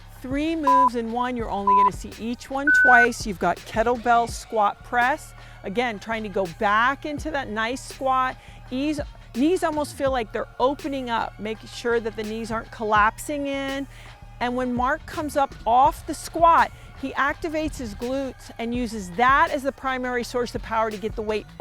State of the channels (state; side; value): identical; both; correlation 1.00